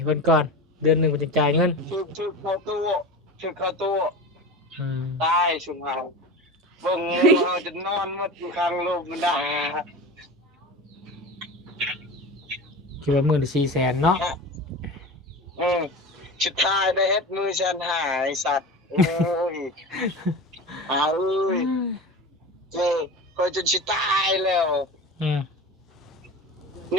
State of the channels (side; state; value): both; normal; correlation 0.30